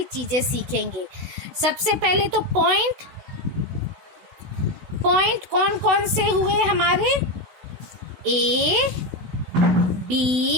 चीजें सीखेंगे। सबसे पहले तो पॉइंट कौन कौन से हुए हमारे? ए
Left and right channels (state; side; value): late; left; 16 ms